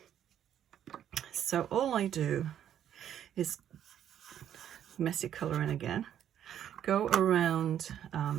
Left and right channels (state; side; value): quieter; left; 10.1 dB